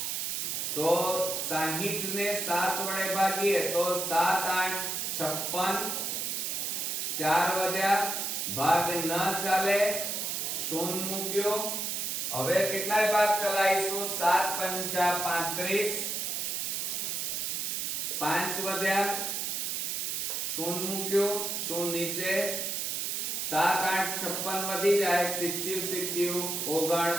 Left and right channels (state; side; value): noise; right; hiss, 1 dB below the sound